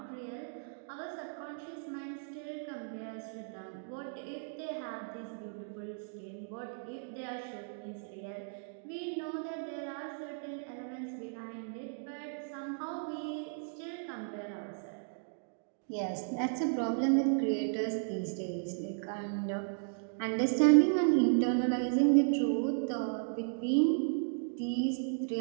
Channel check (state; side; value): silent; left; digital silence